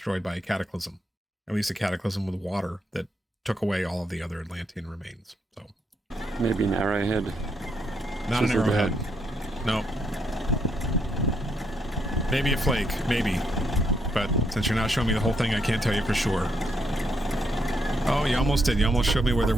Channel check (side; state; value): both; normal; correlation 0.76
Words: by a cataclysm, at least a cataclysm with water that took away all of the other Atlantean remains. So maybe an arrowhead. Not an arrowhead. No. Maybe a flake. Maybe. But since you're not showing me the whole thing, I can't tell you for sure. Oh, you almost did. You almost showed me where there